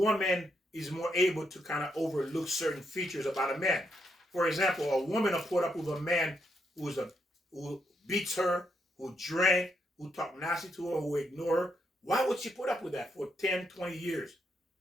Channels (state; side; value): normal; both; correlation 0.79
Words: is more able to kind of overlook certain features about a man. For example, a woman will put up with a man who beats her, who drank, who talk nasty to her, who ignore her. Why would she put up with that for 10, 20 years?